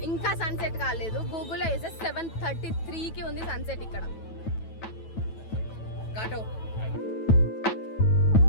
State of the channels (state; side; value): late; right; 9.1 ms